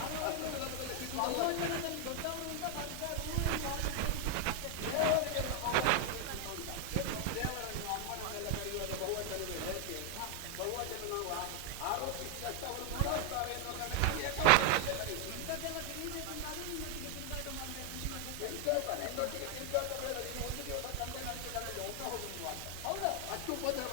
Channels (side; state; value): both; different; correlation 0.00